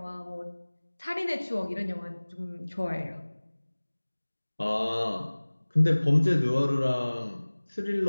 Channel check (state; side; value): inverted; both; correlation -1.00